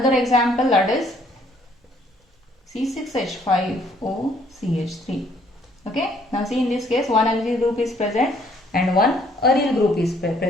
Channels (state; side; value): normal; both; correlation 0.64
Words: example, that is C6H5OCH3. Okay. Now see, in this case one alkyl group is present and one aryl group is